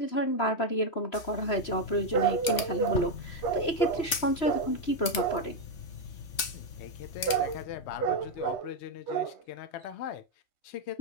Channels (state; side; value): late; right; 3.5 ms